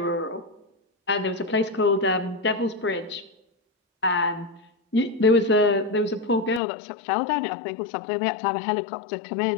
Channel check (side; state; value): right; drops out; at 6.6 s